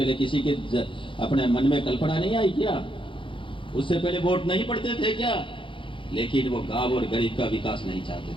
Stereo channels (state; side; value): late; right; 0.25 ms